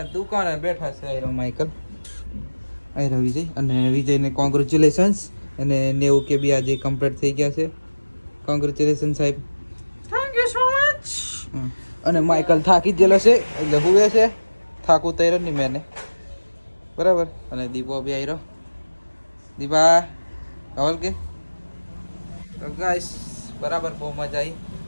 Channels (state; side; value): inverted; both; correlation -1.00